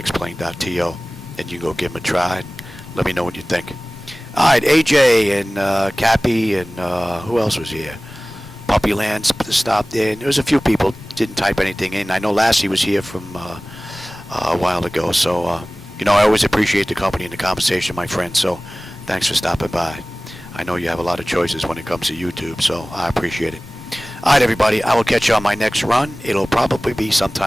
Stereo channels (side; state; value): both; normal; correlation 0.98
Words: and you can go give them a try. Let me know what you think. Alright, AJ and Cappy and who else was here? Puppyland stopped in. There was a few people didn't type anything in. I know Lassie was here from a while ago, so you know, I always appreciate the company and the conversation, my friend, so thanks for stopping by. I know you have a lot of choices when it comes to YouTube, so I appreciate it. Alright, everybody, I will catch you on my next run. It'll probably be